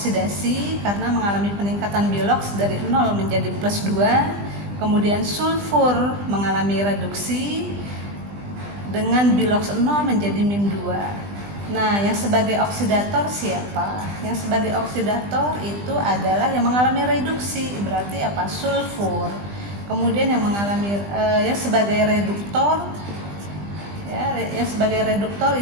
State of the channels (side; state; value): left; late; 20 ms